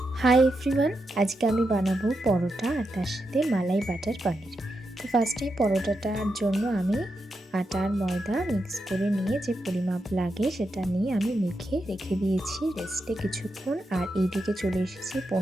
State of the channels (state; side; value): normal; both; correlation 0.86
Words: Hi everyone, আজকে আমি বানাবো পরোটা আর তার সাথে মালাই বাটার পনির। তো ফার্স্টেই পরোটাটার জন্য আমি আটা আর ময়দা মিক্স করে নিয়ে যে পরিমাপ লাগে সেটা নিয়ে আমি মেখে রেখে দিয়েছি রেস্টে কিছুক্ষণ। আর এইদিকে চলে এসেছি